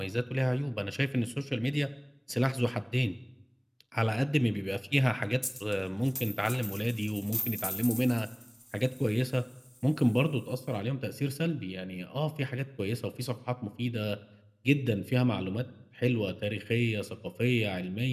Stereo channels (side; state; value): both; identical; correlation 1.00